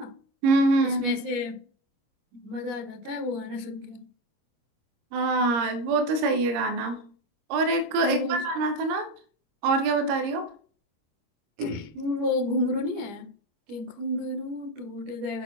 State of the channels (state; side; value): late; left; 26 ms